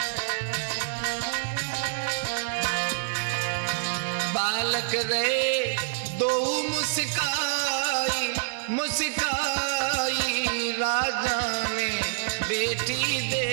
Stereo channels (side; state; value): left; silent; digital silence